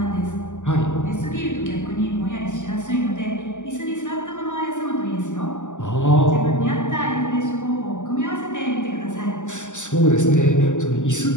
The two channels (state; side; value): late; right; 0.86 ms